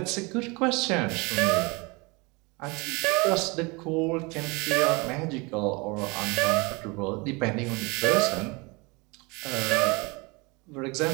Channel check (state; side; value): quieter; left; 27.1 dB